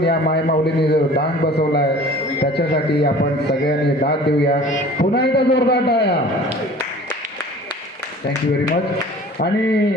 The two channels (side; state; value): both; normal; correlation 0.45